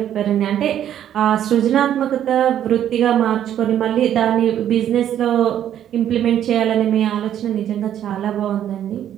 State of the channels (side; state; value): left; quieter; 10.6 dB